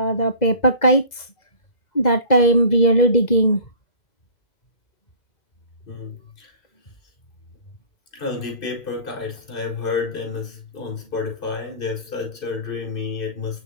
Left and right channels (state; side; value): late; right; 2.0 ms